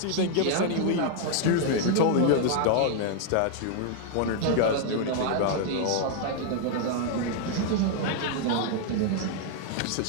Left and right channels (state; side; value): different; both; correlation 0.00